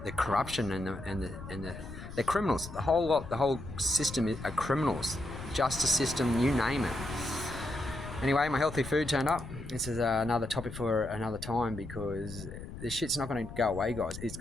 the corruption and the criminals. The whole lot, the whole system are criminals. Justice system, you name it. Anyway, my healthy food turned up. This is another topic for another time, because this shit's not going to go away, guys. It's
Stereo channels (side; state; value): left; noise; rumble, 11 dB below the sound